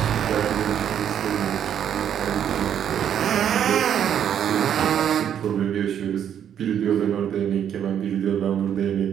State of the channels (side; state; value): left; quieter; 9.3 dB